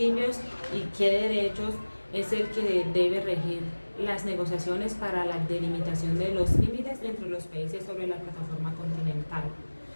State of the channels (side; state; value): both; inverted; correlation -1.00